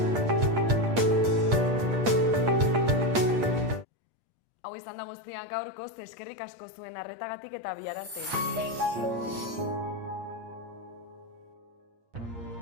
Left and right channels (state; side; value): late; left; 8.6 ms